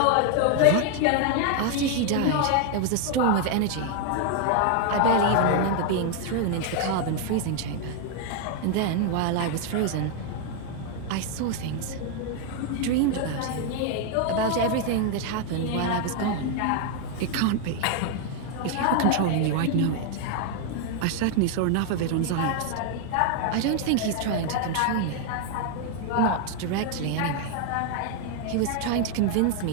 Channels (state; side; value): different; both; correlation 0.00